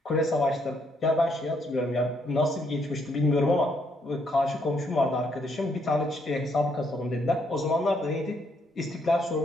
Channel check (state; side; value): normal; both; correlation 0.72